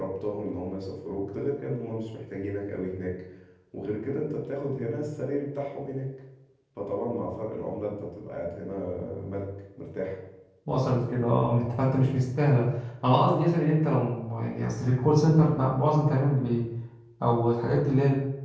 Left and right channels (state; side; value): identical; both; correlation 1.00